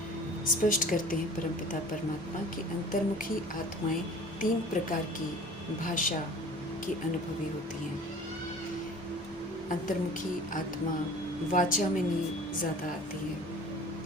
स्पष्ट करते हैं परमपिता परमात्मा कि अंतर्मुखी आत्माएं 3 प्रकार की भाषा की अनुभवी होती हैं। अंतर्मुखी आत्मा वाचा में नहीं ज़्यादा आती है।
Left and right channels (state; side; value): normal; both; correlation 0.45